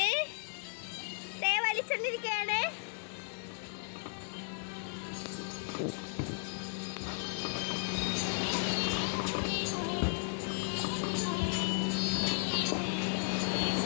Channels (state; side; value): silent; right; digital silence